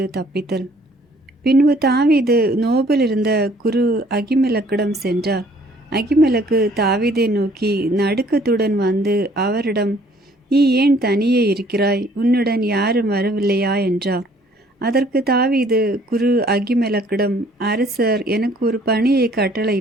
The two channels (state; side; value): normal; both; correlation 0.59